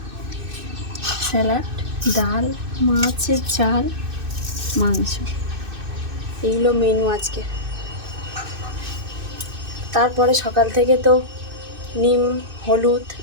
স্যালাড, ডাল, মাছের ঝাল, মাংস। এইগুলো মেনু আজকে। তারপরে সকাল থেকে তো নিম, হলুদ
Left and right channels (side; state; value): left; late; 2.6 ms